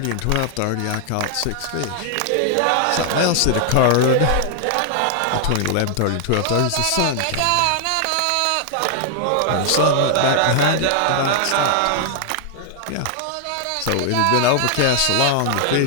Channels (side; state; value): both; different; correlation 0.00